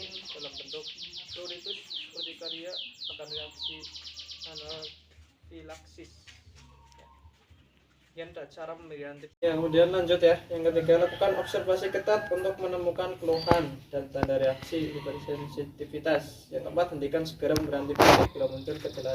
dalam bentuk pruritus, urtikaria, akan reaksi anafilaksis. Yang ada cara pemberian antibiotik. Ya, kemudian lanjut ya. Yang ketiga, lakukan observasi ketat untuk menemukan keluhan dan tanda reaksi hipersensitivitas. Yang keempat, hentikan segera memberi antibiotik bila muncul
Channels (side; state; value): both; identical; correlation 1.00